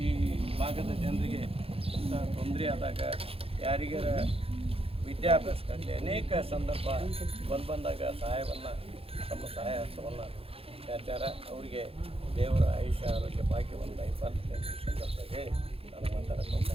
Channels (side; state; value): left; late; 0.27 ms